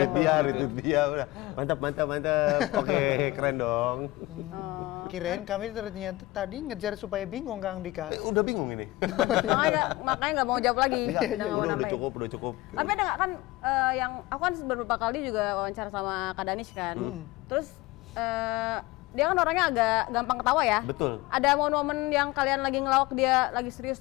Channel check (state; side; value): quieter; right; 19.9 dB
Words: retweet dia, udah. Mantap. Oke, keren dong. Kirain kami ternyata tadi ngejar supaya bingung Kang Dika. Udah bingung ini. makanya nggak mau jawab lagi. Udah nggak mau udah nambahin. cukup. Tapi ada nggak kan yang aku kan beberapa kali juga wawancara sama Kak Danis kan. Terus dia kan orangnya agak gampang ketawa ya. Betul. Ada momen-momen yang kalian lagi ngelawak dia lagi serius